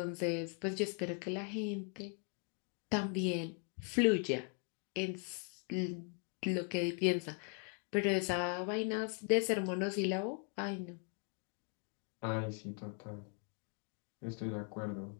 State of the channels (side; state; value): right; quieter; 38.1 dB